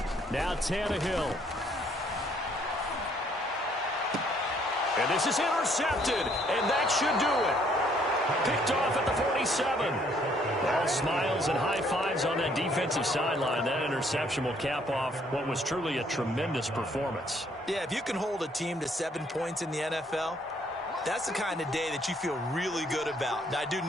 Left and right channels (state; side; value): normal; both; correlation 0.65